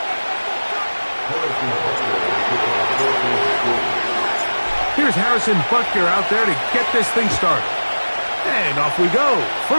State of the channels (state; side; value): inverted; both; correlation -1.00